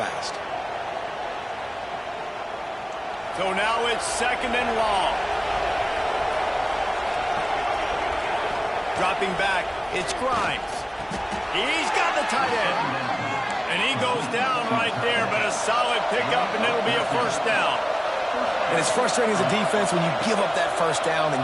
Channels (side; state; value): both; identical; correlation 1.00